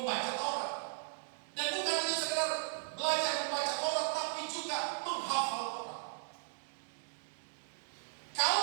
Taurat. Dan bukan hanya sekedar belajar membaca Taurat, tapi juga menghafal Taurat.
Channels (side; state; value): left; silent; digital silence